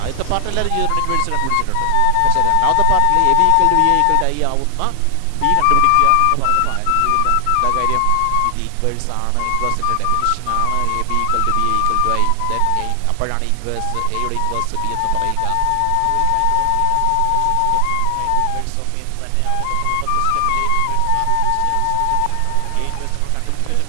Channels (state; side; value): different; both; correlation 0.00